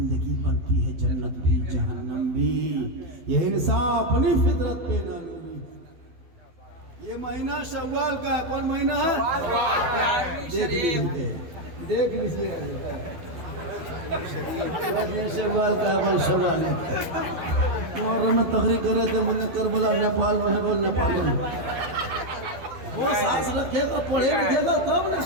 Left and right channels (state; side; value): late; left; 12 ms